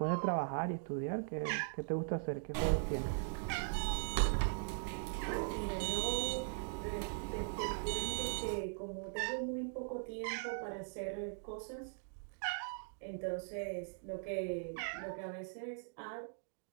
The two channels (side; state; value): left; silent; digital silence